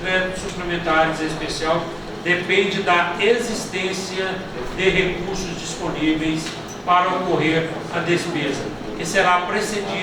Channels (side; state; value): both; identical; correlation 1.00